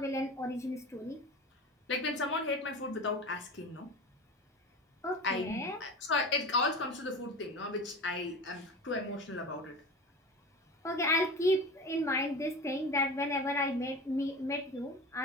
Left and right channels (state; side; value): normal; both; correlation 0.31